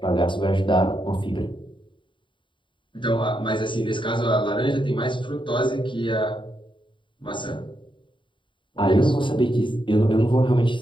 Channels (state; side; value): late; right; 0.24 ms